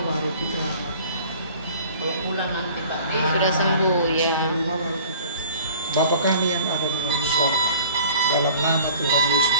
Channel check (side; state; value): both; inverted; correlation -0.48